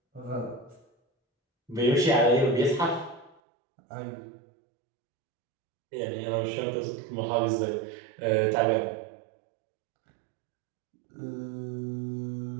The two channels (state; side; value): drops out; left; at 3.4 s